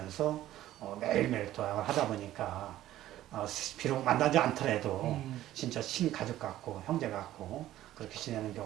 매일매일 도약을 하다 보니까 비록 만나지 않더라도 진짜 친가족 같고 형제 같고 그렇게 지내는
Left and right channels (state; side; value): quieter; left; 13.8 dB